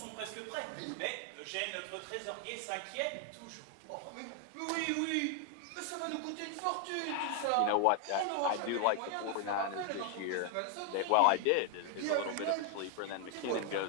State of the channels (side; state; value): both; different; correlation 0.00